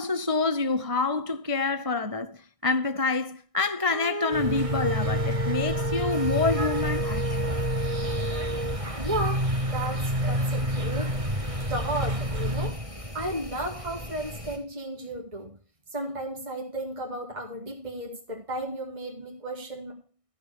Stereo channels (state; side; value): late; left; 1.6 ms